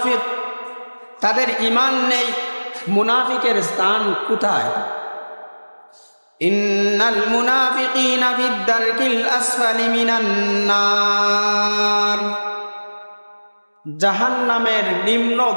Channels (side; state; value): both; inverted; correlation -1.00